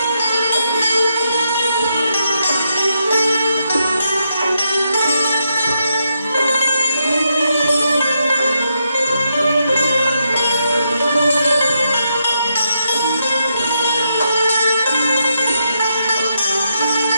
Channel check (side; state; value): both; inverted; correlation -0.82